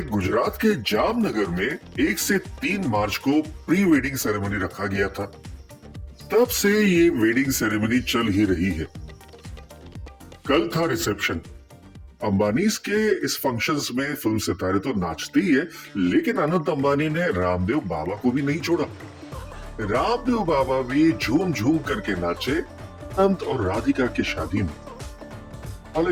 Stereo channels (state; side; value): identical; both; correlation 1.00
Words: गुजरात के जामनगर में 1 से 3 मार्च को प्री वेडिंग सेरेमनी रखा गया था। तब से ये वेडिंग सेरेमनी चल ही रही है। कल था रिसेप्शन। अंबानीज के इस फंक्शंस में फिल्म सितारे तो नाचते ही है, लेकिन अनंत अंबानी ने रामदेव बाबा को भी नहीं छोड़ा। रामदेव बाबा भी झूम झूम करके नाचे अनंत और राधिका की शादी में।